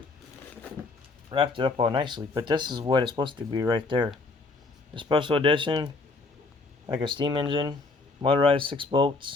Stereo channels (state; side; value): quieter; right; 3.7 dB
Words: wrapped it up all nicely, but this is what it's supposed to be right there. The special edition, like a steam engine, motorized 6